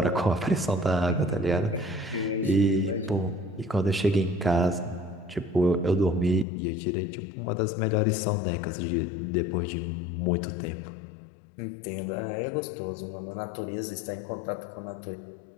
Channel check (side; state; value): right; drops out; at 6.5 s